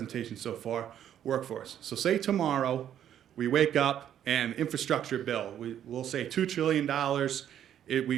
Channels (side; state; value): left; quieter; 10.3 dB